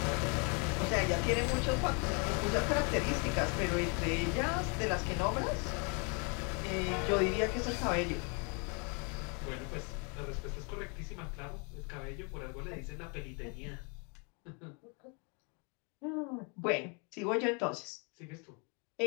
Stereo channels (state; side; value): quieter; right; 34.9 dB